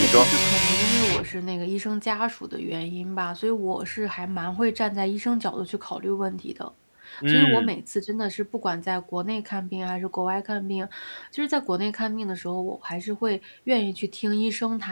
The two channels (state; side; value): inverted; both; correlation -1.00